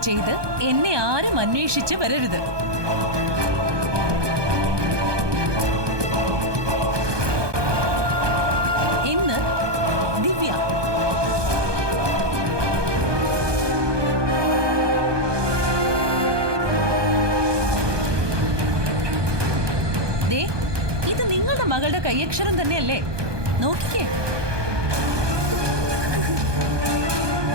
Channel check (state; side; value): late; left; 1.2 ms